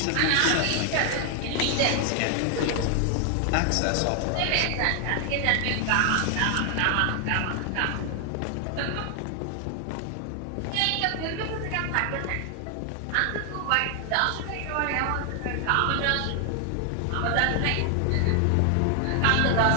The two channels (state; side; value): different; both; correlation 0.00